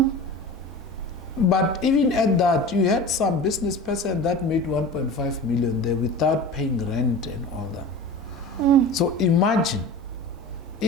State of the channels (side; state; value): both; normal; correlation 0.35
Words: But even at that, you had some business person that made 1.5 million there without paying rent and all that. So imagine